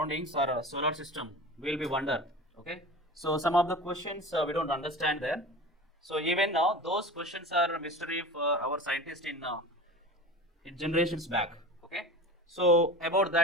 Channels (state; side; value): normal; both; correlation 0.33